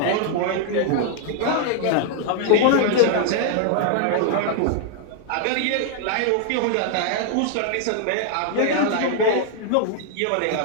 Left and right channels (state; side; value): different; both; correlation 0.00